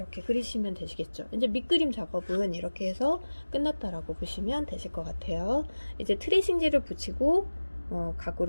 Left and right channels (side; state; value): both; inverted; correlation -1.00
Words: 그리시면 되시겠죠. 이제 밑그림 작업은 이렇게 해서 끝났다라고 보시면 되실 것 같아요. 이제 트리싱지를 붙이고